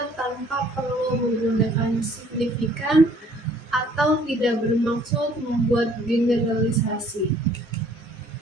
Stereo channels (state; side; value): normal; both; correlation 0.59